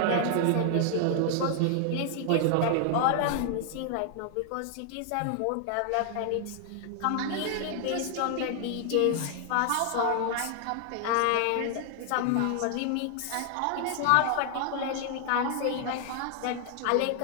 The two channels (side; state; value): both; different; correlation 0.00